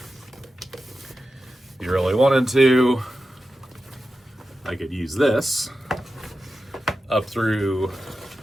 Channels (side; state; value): both; normal; correlation 0.91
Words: if you really wanted to, I could use this up through